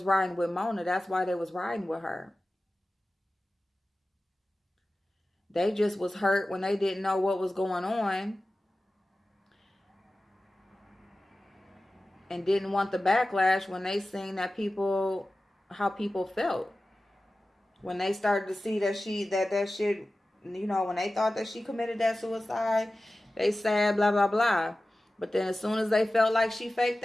riding with Mona, that's why they was riding with her. They just was hurt when they didn't know what was going on and didn't want the backlash when they seen that how people felt. When they started to see that that shit, when they thought that she committed that suicide, they said blah, blah, blah. But then as soon as they felt like she faked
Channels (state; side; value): normal; both; correlation 0.96